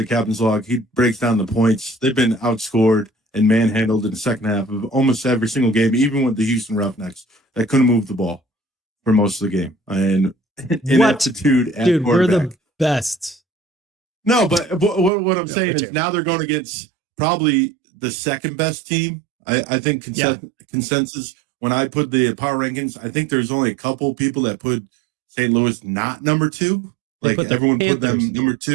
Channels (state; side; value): drops out; left; at 15.1 s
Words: captain's log, he breaks down the points. They've been outscored and manhandled in the second half of almost every single game, even with the Houston Roughnecks that couldn't move the ball for most of the game. And ineptitude at dude, quarterback. We're the best. No, but what I'm saying is now they're going against probably the second best team. I think consensus, when I put the power rankings, I think there's only a couple people that put St. Louis not number 2. Like everyone put them number